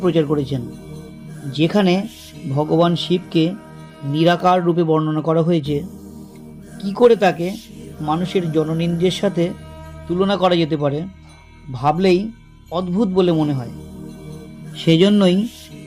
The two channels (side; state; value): both; identical; correlation 1.00